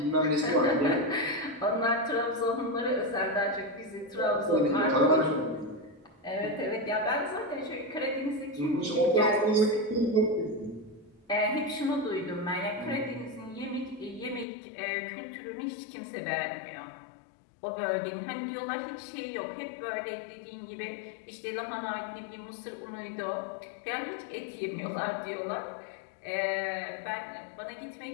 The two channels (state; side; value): drops out; right; at 14.5 s